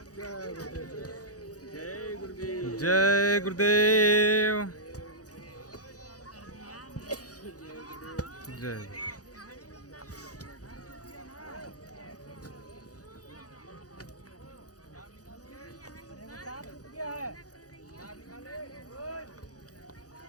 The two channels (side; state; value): right; late; 0.67 ms